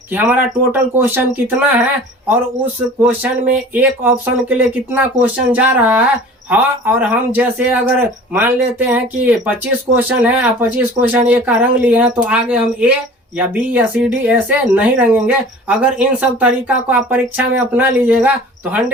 कि हमारा टोटल क्वेश्चन कितना है और उस क्वेश्चन में एक ऑप्शन के लिए कितना क्वेश्चन जा रहा है। हाँ, और हम जैसे अगर मान लेते हैं कि 25 क्वेश्चन है और 25 क्वेश्चन ए का रंग लिए हैं तो आगे हम ए या बी या सी डी ऐसे नहीं रंगेंगे। अगर इन सब तरीका को आप परीक्षा में अपना लीजिएगा तो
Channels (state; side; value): normal; both; correlation 0.43